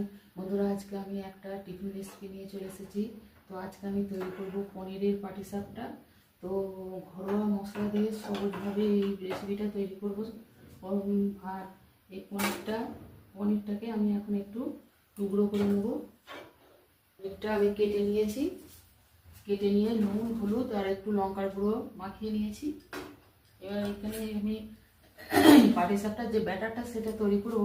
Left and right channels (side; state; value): both; identical; correlation 1.00